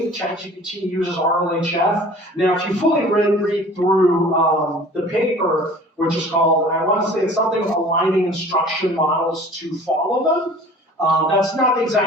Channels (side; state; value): both; normal; correlation 0.46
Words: ChatGPT uses RLHF. Now, if you fully read through the paper, which is called, I want to say it's something aligning instruction models to follow them. That's not the